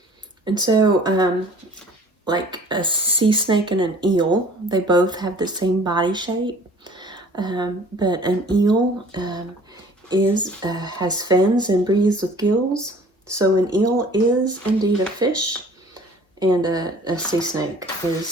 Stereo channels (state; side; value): normal; both; correlation 0.50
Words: And so, like a sea snake and an eel, they both have the same body shape, but an eel has fins and breathes with gills. So an eel is indeed a fish, and a sea snake